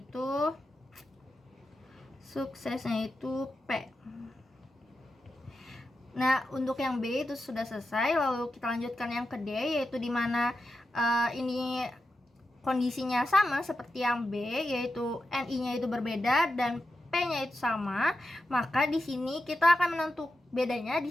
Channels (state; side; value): normal; both; correlation 0.89